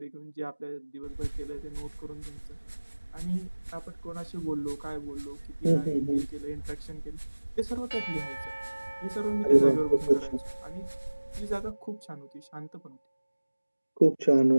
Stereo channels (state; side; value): inverted; both; correlation -1.00